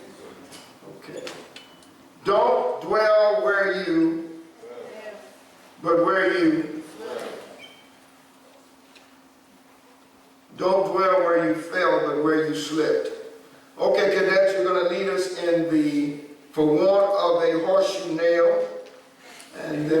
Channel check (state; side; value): identical; both; correlation 1.00